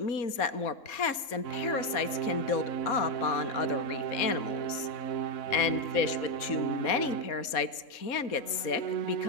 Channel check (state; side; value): late; right; 3.7 ms